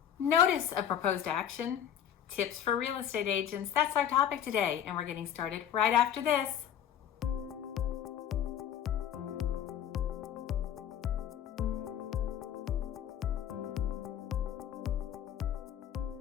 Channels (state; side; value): quieter; right; 9.8 dB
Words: Notice of proposed action, tips for real estate agents. That's our topic today, and we're getting started right after this.